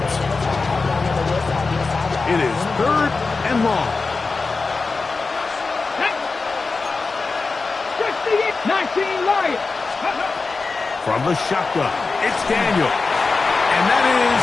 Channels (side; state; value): right; quieter; 4.1 dB